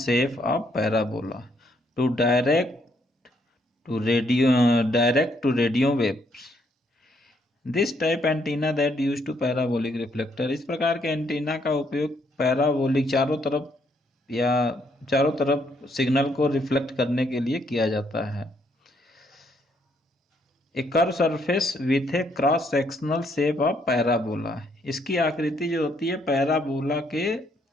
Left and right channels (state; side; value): normal; both; correlation 0.71